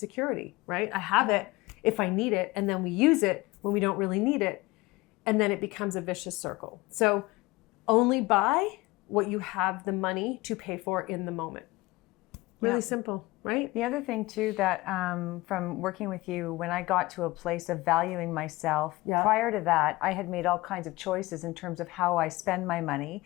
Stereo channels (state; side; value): quieter; right; 21.0 dB